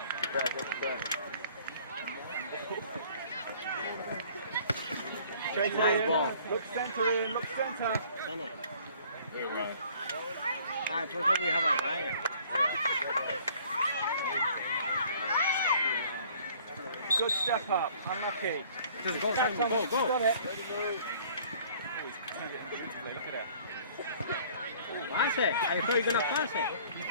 Back, watch your back. Nice ball. Look center in, look center. There, Ryan. Ah, por favor, we have a Ryan. Good step up, unlucky. Just go, Simon, go. Got it. Look at that. Pass it. I thought you were going to pass it. He's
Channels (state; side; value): inverted; both; correlation -0.55